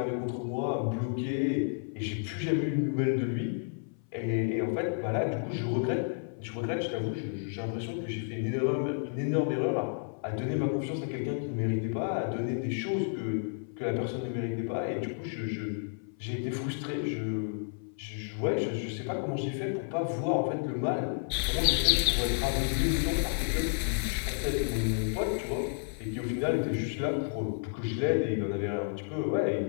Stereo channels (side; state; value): right; silent; 56 dB below the other